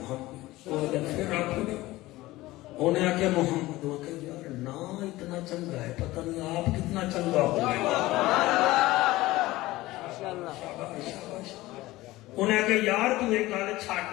وہ پھر آکھو نا. انہیں آکھیا محمد. وہ کہ یار نام کتنا چنگا ہے، پتہ نہیں آپ کتنا چنگا ہوئے۔ انہیں کہ یار تو ایک گل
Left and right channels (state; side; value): quieter; right; 18.2 dB